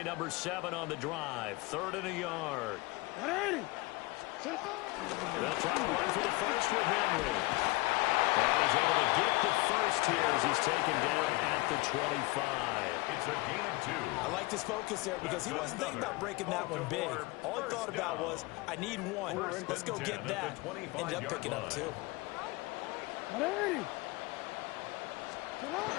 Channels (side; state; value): right; quieter; 22.7 dB